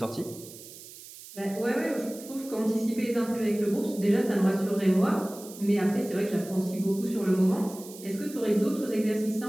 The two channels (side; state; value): right; noise; hiss, 16 dB below the sound